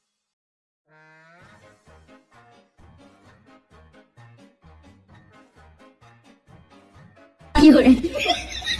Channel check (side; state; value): both; identical; correlation 1.00